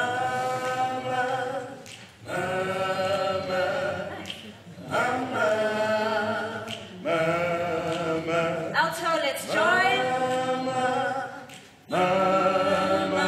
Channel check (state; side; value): identical; both; correlation 1.00